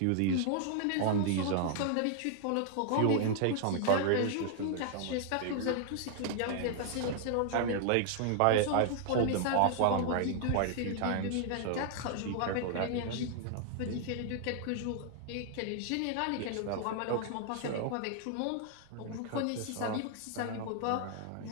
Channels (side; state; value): both; different; correlation 0.00